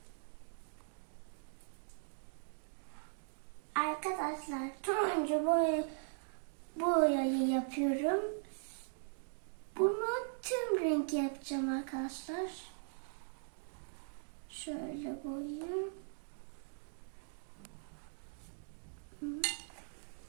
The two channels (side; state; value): left; silent; digital silence